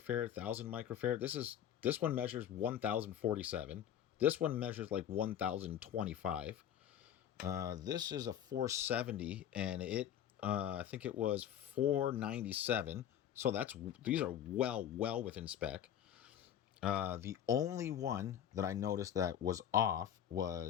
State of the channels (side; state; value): right; quieter; 10.1 dB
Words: 1,000 microfarad. This one measures 1,047. This one measures like 1,025. This is a 470, and it I think it was 497. So these are well within spec. The only one that I noticed that was off